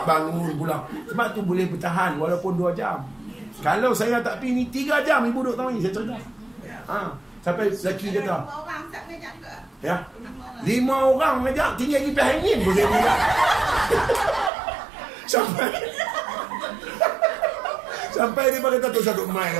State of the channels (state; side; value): drops out; left; at 14.5 s